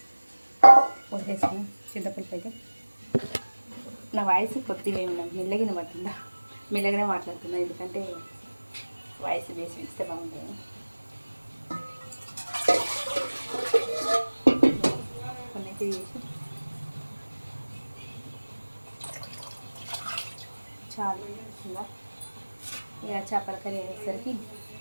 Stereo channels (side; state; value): both; inverted; correlation -1.00